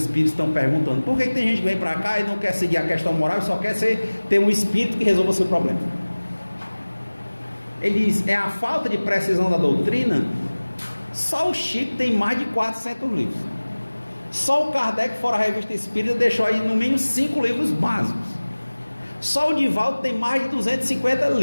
estão perguntando, por que tem gente que vem para cá e não quer seguir a questão moral e só quer ter um espírito que resolva o seu problema? Ele diz, é a falta de precisão da doutrina. Só o Chico tem mais de 400 livros. Só o Kardec, fora a Revista Espírita, deixou aí no mínimo 5 livros básicos. Só o Divaldo tem mais de 250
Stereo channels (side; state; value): both; inverted; correlation -1.00